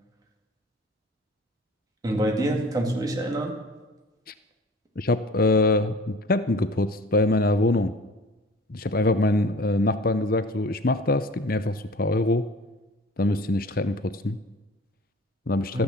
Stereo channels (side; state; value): both; normal; correlation 0.44